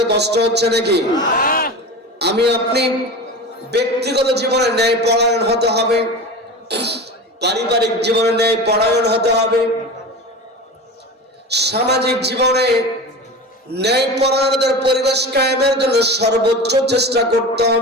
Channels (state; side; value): normal; both; correlation 0.30